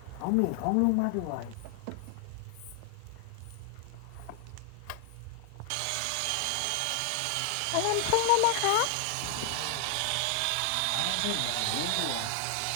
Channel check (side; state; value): both; different; correlation 0.00